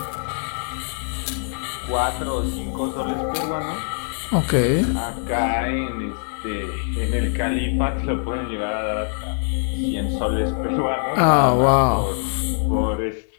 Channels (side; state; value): right; silent; digital silence